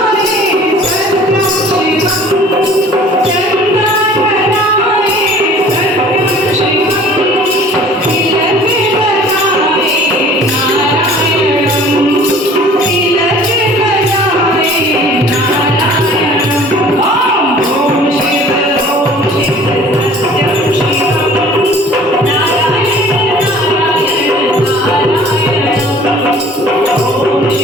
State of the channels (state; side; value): normal; both; correlation 0.49